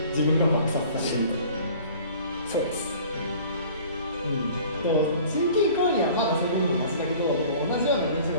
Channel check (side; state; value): both; inverted; correlation -0.48